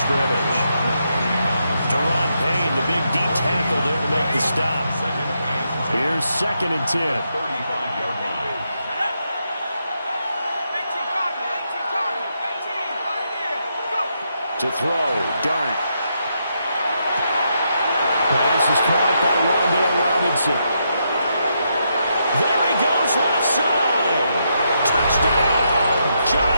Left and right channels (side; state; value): both; inverted; correlation -0.81